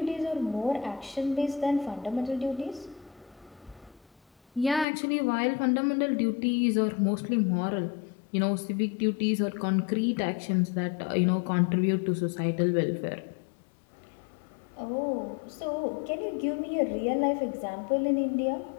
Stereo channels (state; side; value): drops out; right; at 4.9 s